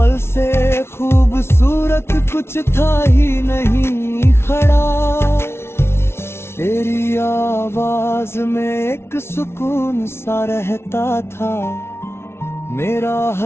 से खूबसूरत कुछ था ही नहीं खड़ा। तेरी आवाज में एक सुकून सा रहता था, मेरा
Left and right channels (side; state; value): right; late; 0.12 ms